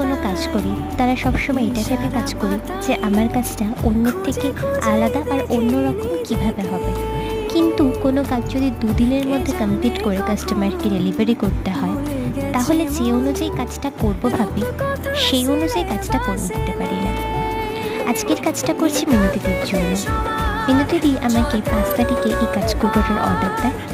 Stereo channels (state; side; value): identical; both; correlation 1.00